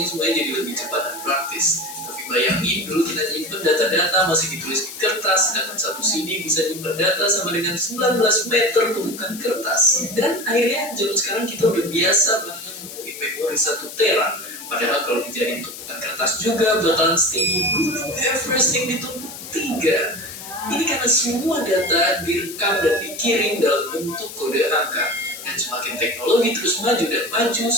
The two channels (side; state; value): left; noise; hiss, 12 dB below the sound